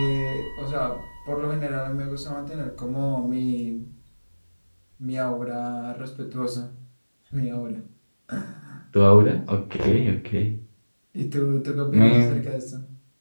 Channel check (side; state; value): both; inverted; correlation -1.00